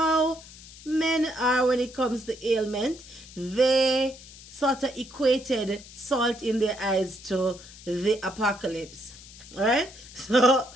men are when it comes to ailment. They sort of equated salt in their eyes to the apocalypse. Alright? So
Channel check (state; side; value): noise; left; hiss, 18 dB below the sound